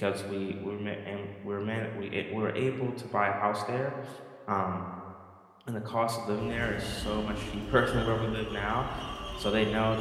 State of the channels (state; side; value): identical; both; correlation 1.00